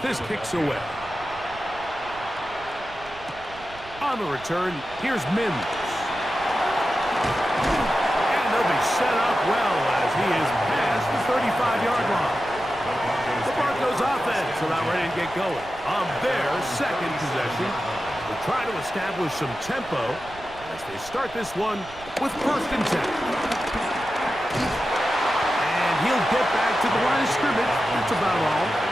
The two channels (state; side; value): noise; right; rumble, 20 dB below the sound